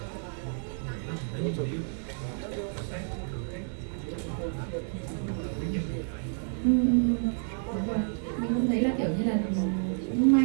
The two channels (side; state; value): left; silent; 58 dB below the other